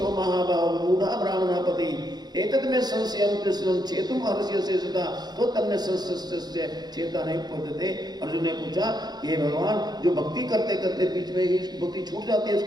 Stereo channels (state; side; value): late; left; 0.20 ms